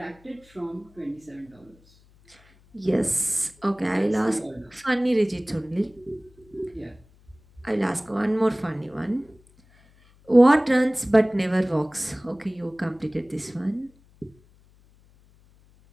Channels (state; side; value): noise; left; hum, 29 dB below the sound